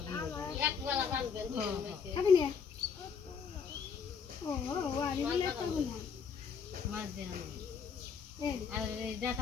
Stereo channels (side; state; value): right; quieter; 6.3 dB